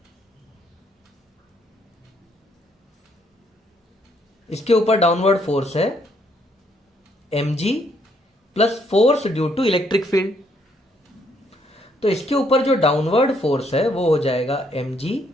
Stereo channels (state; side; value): normal; both; correlation 0.70